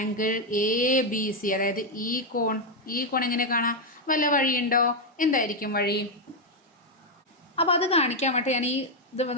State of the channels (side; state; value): both; normal; correlation 0.03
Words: എ ബി സി അതായത് ഈ കോൺ എങ്ങനെ കാണാം? വല്ല വഴിയുണ്ടോ? എന്തായിരിക്കും വഴി? അപ്പോൾ അത് കാണിക്കാൻ വേണ്ടി ഞാൻ ഈ ഇത്